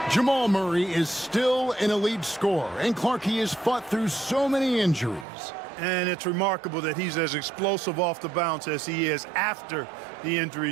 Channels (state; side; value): drops out; left; at 5.2 s